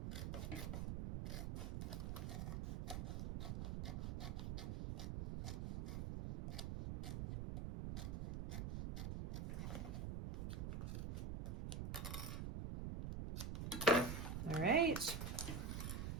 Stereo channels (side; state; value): right; noise; rumble, 2 dB below the sound